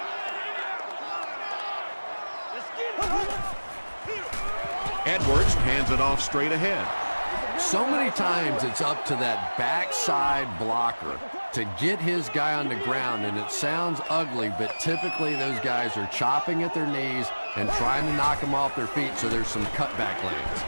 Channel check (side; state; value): both; inverted; correlation -1.00